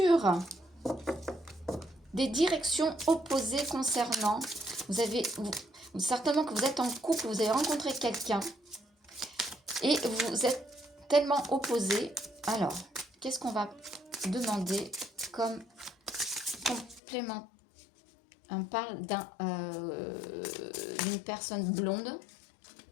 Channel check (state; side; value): drops out; right; at 17.0 s